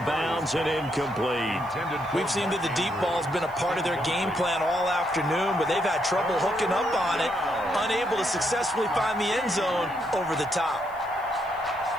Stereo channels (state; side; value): noise; left; hiss, 28 dB below the sound